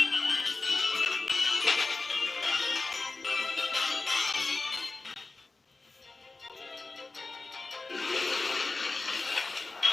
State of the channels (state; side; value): quieter; right; 3.6 dB